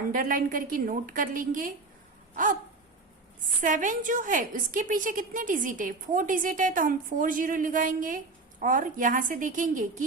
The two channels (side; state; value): left; quieter; 3.7 dB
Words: करके नोट कर लेंगे। अब 7 जो है उसके पीछे कितने डिजिट है, 4 डिजिट है, तो हम 40 लगाएंगे और यहां से देखेंगे